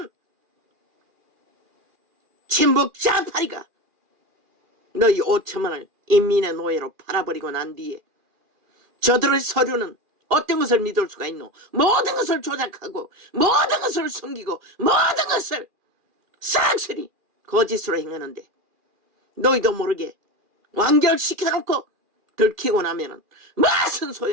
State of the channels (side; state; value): left; late; 2.4 ms